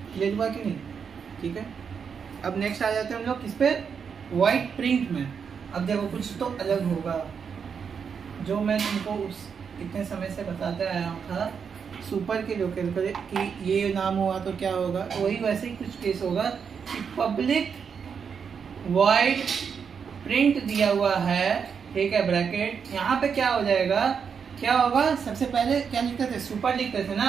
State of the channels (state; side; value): quieter; left; 6.6 dB